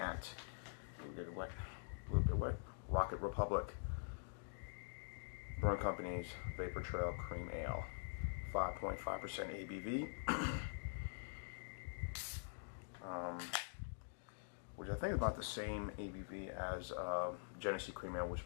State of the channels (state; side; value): silent; right; digital silence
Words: a little bit wet, Rocket Republic Brewing Company's Vapor Trail Cream Ale, 5.5% ABV, which I think is about the same ABV as Genesee Cream Ale, which